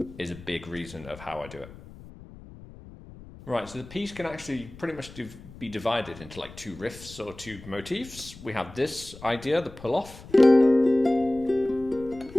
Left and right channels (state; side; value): noise; left; rumble, 18 dB below the sound